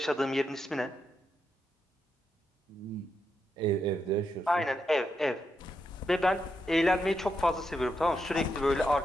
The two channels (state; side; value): normal; both; correlation 0.83